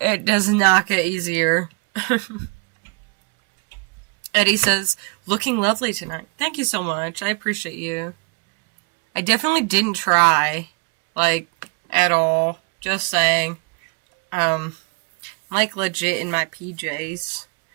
does not get easier. Eddie says, looking lovely tonight. Thank you so much. I appreciate you. I definitely didn't try, like, at all. Just saying. Like, legit in my PJs.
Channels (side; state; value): left; quieter; 33.1 dB